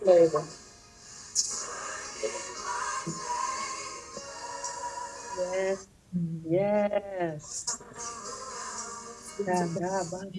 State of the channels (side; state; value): both; identical; correlation 1.00